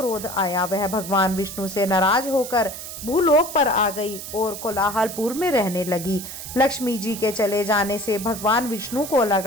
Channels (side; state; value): right; noise; hiss, 10 dB below the sound